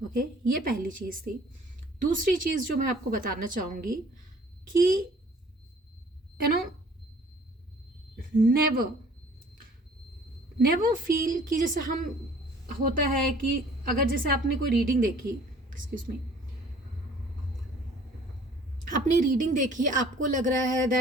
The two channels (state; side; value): normal; both; correlation 0.53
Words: ओके, ये पहली चीज़ थी। दूसरी चीज़ जो मैं आपको बताना चाहूँगी कि नेवर फील कि जैसे हम होता है कि अगर जैसे आपने कोई रीडिंग देखी, एक्सक्यूज मी, आपने रीडिंग देखी, आपको लग रहा है